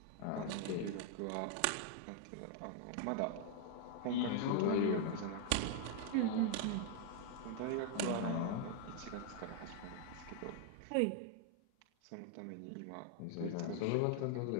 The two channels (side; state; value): both; different; correlation 0.00